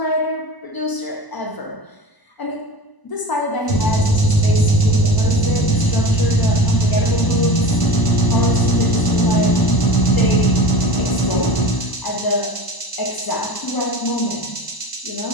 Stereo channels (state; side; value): late; right; 1.0 ms